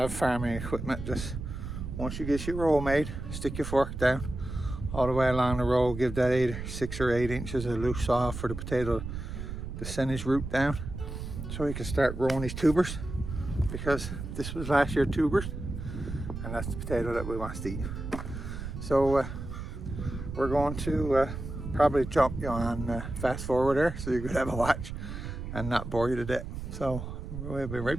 farming equipment. Just once you get your row made, stick your fork down all the way along the row, give that 6 or 8 inches of loose soil for the potato to send his root down so he can start growing his tubers, because this was last year's tubers and that's the potato that we want to eat. So we're going to probably jump you on fast forward there so you could have a watch and not bore you to death. So we'll be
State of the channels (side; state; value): right; noise; rumble, 7 dB below the sound